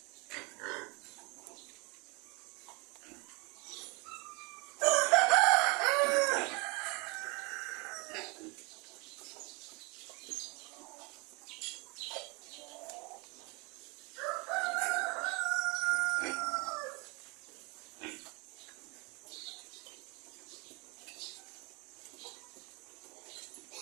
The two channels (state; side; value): quieter; left; 28.7 dB